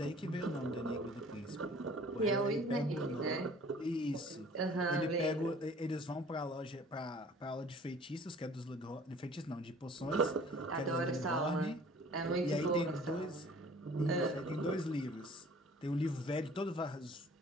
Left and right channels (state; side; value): normal; both; correlation 0.50